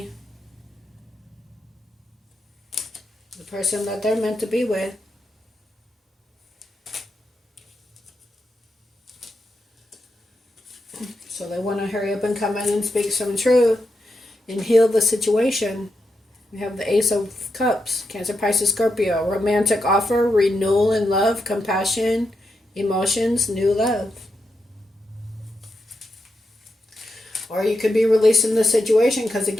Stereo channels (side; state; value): both; normal; correlation 0.86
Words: The person that they're meant to be with. So they want to hurry up and come in and speak some truth and heal the situation. We have the Ace of Cups, Cancer, Pisces, Scorpio. Romantic offer, renewal in love, compassion, emotions, new love. Or you could be releasing the situation because,